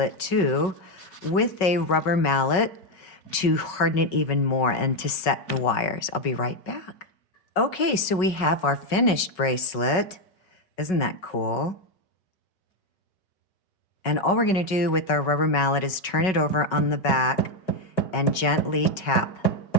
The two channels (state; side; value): late; right; 5.4 ms